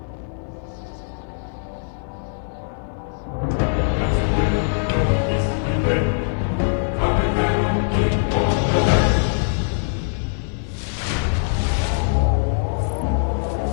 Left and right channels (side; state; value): right; silent; digital silence